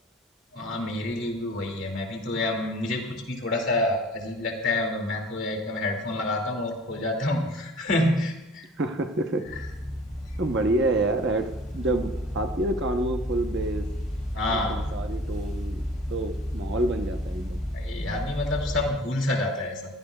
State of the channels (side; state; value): both; normal; correlation 0.47